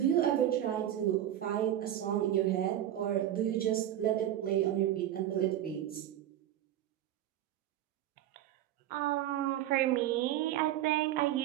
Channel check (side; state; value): left; quieter; 12.0 dB